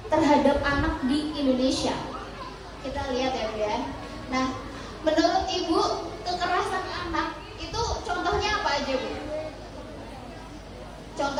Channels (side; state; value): both; identical; correlation 1.00